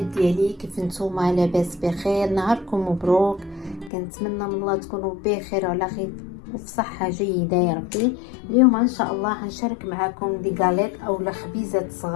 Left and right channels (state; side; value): drops out; right; at 3.9 s